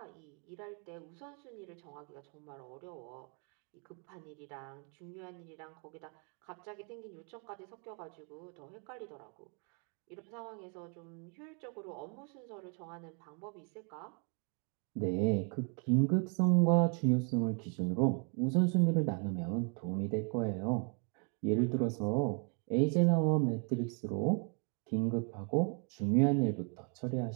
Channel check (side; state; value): left; quieter; 38.2 dB